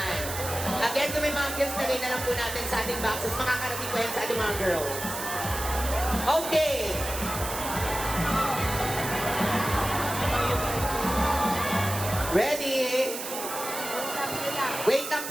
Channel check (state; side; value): noise; right; hiss, 7 dB below the sound